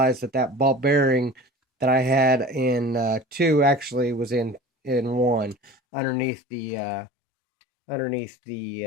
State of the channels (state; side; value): drops out; right; at 5.8 s